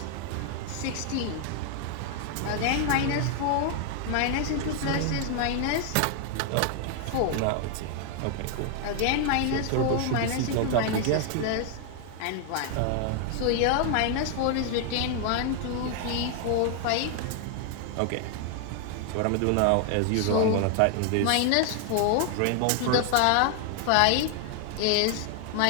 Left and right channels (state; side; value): different; both; correlation 0.00